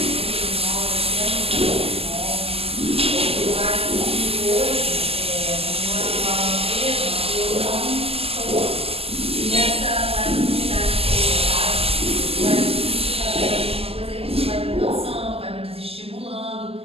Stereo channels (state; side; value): late; left; 0.28 ms